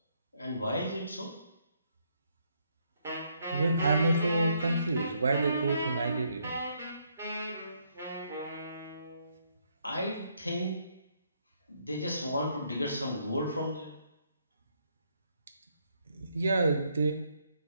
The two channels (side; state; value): both; inverted; correlation -0.73